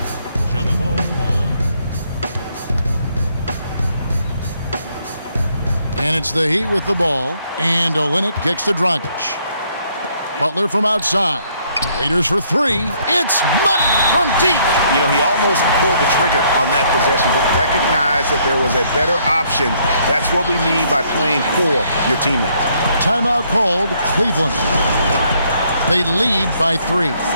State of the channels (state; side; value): inverted; both; correlation -0.68